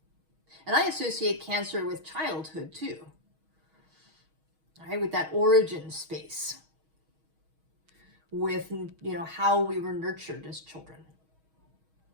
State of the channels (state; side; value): late; left; 6.3 ms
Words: And I associate Cancer with childhood too, right? With that origin space, with, you know, how we were nurtured as children.